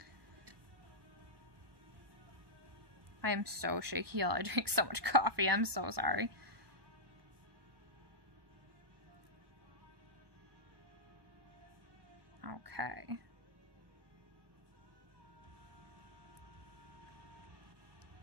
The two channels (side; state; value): left; late; 1.1 ms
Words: I am so shaky, y'all. I drink so much coffee. I'm so sorry. Okay.